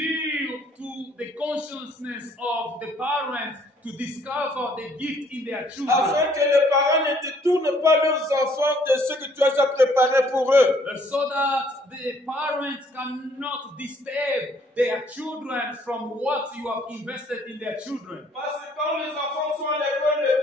to the consciousness of the parents to discover the gift in their children, Afin que les parents ne détournent pas leurs enfants de ce que tu as déjà préparé pour eux. so that the parents cannot disturb their children from what you have invested in their children. Parce que quand les enfants sont à l'école,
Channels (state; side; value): normal; both; correlation 0.63